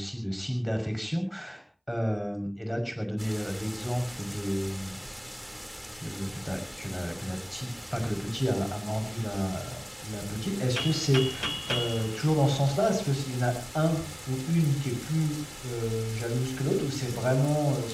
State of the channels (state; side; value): identical; both; correlation 1.00